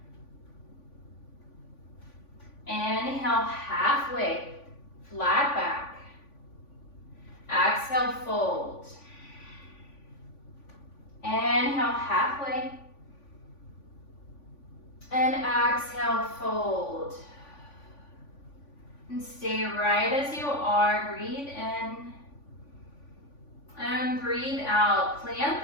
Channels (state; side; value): late; right; 3.5 ms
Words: Inhale, halfway, flat back. Exhale, fold. Inhale, halfway. And exhale, fold. And stay right as you are. Breathe in. And breathe out. Plant